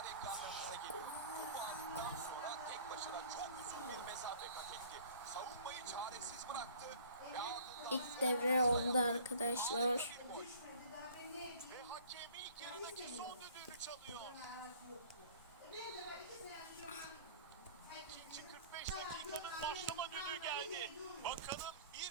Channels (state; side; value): inverted; both; correlation -0.49